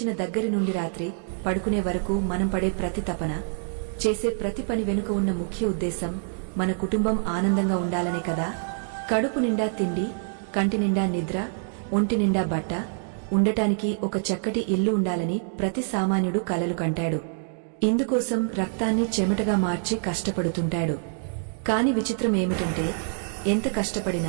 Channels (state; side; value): silent; left; digital silence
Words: దగ్గరి నుండి రాత్రి పడుకునే వరకు మనం పడే ప్రతి తపన, చేసే ప్రతి పని వెనుక ఉన్న ముఖ్య ఉద్దేశం మన కుటుంబం ఆనందంగా ఉండాలనే కదా. కడుపు నిండా తిండి, కంటి నిండా నిద్ర, ఒంటి నిండా బట్ట, ఉండటానికి ఒక చక్కటి ఇల్లు ఉండాలని ప్రతి సామాన్యుడు కలలు కంటాడు. ఇందుకోసం రక్తాన్ని చెమటగా మార్చి కష్టపడుతుంటాడు. కాని విచిత్రం ఏమిటంటే, ఎంత